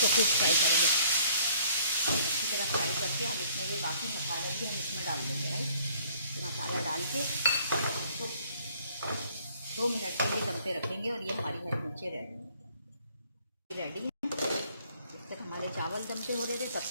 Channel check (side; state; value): both; inverted; correlation -0.60